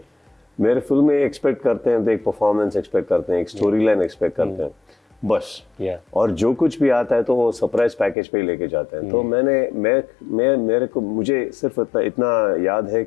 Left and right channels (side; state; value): right; drops out; at 8.2 s